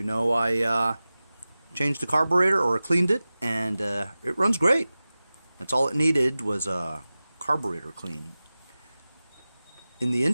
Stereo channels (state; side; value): inverted; both; correlation -0.97